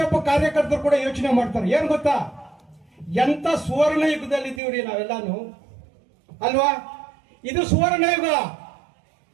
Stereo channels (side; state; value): left; drops out; at 4.6 s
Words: ಕಾರ್ಯಕರ್ತರು ಕೂಡ ಯೋಚನೆ ಮಾಡ್ತಾರೆ. ಏನ್ ಗೊತ್ತಾ, ಎಂತ ಸುವರ್ಣ ಯುಗದಲ್ಲಿ ಇದ್ದೀವ್ರಿ ನಾವೆಲ್ಲಾನು ಅಲ್ವಾ? ಇದು ಸುವರ್ಣ ಯುಗ.